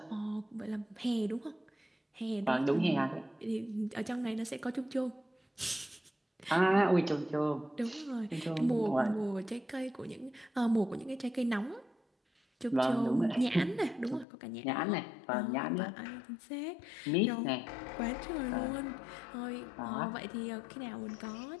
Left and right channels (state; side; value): drops out; right; at 14.2 s